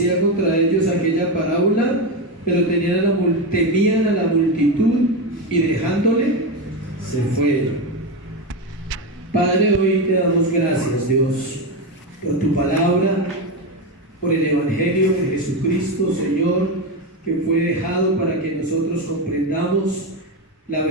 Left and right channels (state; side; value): normal; both; correlation 0.14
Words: contra ellos aquella parábola, pero temían a la multitud y dejándole se fueron. Padre, hoy te damos gracias, Dios, por tu palabra, por el Evangelio de Jesucristo, Señor, que fue dejado para que nosotros comprendamos la